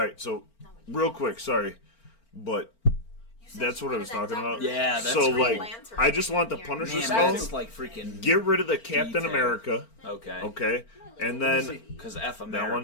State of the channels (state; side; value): late; right; 4.4 ms